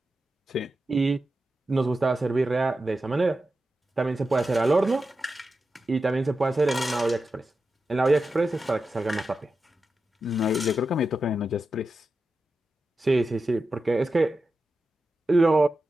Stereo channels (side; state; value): both; normal; correlation 0.91